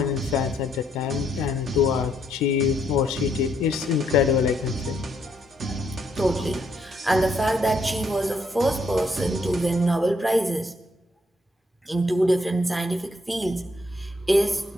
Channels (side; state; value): both; normal; correlation 0.72